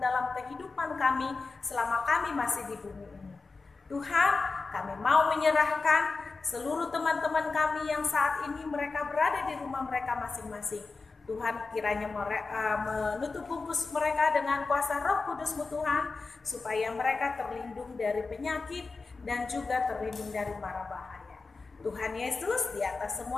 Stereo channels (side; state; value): right; quieter; 4.0 dB